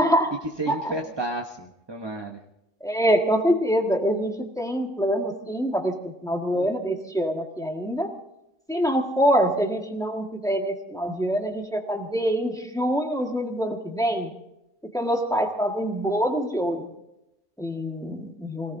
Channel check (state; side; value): normal; both; correlation 0.65